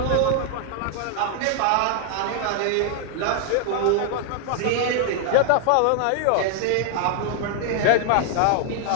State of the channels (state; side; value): different; both; correlation 0.00